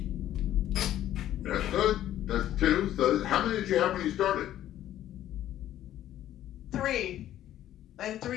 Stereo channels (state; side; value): quieter; right; 12.4 dB